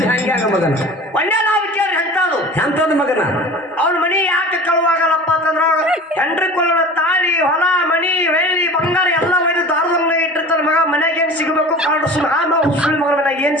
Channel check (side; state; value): both; normal; correlation 0.39